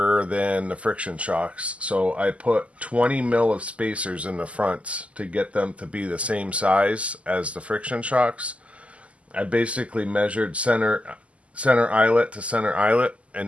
than the friction shocks. So I put 20 mil of spacers in the fronts to get them to be the same size as the friction shocks. I basically measured center eyelet to center eyelet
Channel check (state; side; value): late; left; 0.063 ms